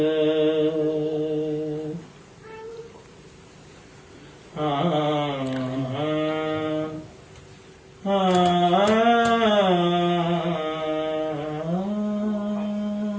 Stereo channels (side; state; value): both; identical; correlation 1.00